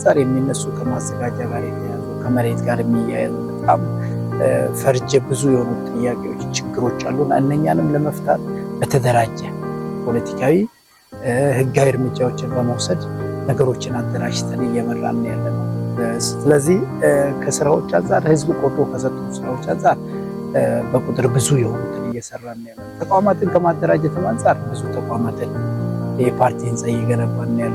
የሚነሱ ከማዘጋጃ ጋር የተያዙ ከመሬት ጋር የሚያያዙ በጣም ፈርጀ ብዙ የሆኑ ጥያቄዎች፣ ችግሮች አሉና እነኛንም ለመፍታት በተደራጀ ፖለቲካዊ ህጋዊ እርምጃዎችን በመውሰድ ነገሮችን አደራጅተን እየመራን ያለ ነው። ስለዚህ ከስራዎች አንጻር ህዝብ ቆጥሮ ከሰጡ ስራዎች አንጻር በቁጥር ብዙ የሆኑትን እየሰራን ያለ ነው። ተቋማትን ከማደራጀትም አንጻር ብዙ ተቋማትን የፓርቲ ህንፃ እየገነባን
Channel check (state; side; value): identical; both; correlation 1.00